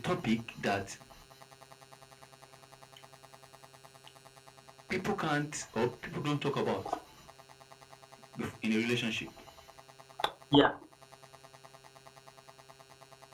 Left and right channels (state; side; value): identical; both; correlation 1.00